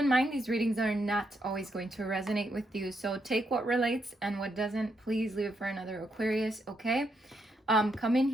mind these readings are not always going to resonate with you, so take what relates and what doesn't, please leave it for another Aquarius, okay? Come in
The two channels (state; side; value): normal; both; correlation 0.79